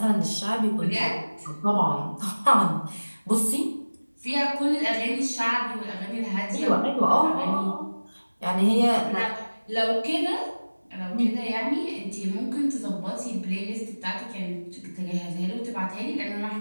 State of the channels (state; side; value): inverted; both; correlation -1.00